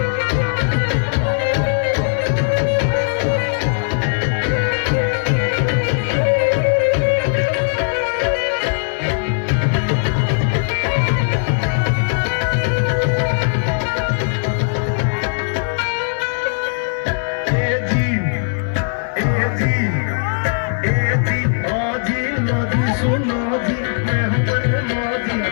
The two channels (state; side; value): silent; right; 67 dB below the other